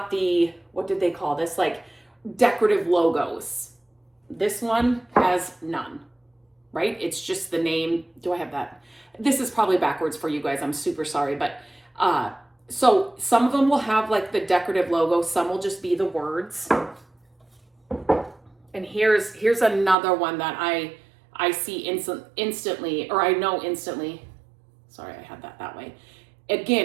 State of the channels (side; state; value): left; drops out; at 20.0 s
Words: the, what did they call this? Like decorative logos. This one has none, right? It's just the name. Do I have that? This is probably backwards for you guys. I'm super sorry. But so some of them will have like the decorative logo. Some will just be the words. And here's another one that I see instantly, or I know instantly. Sorry, I had that way.